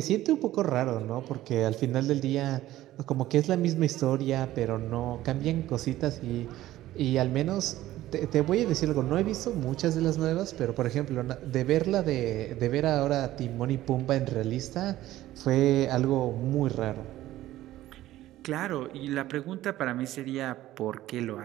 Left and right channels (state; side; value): quieter; left; 14.9 dB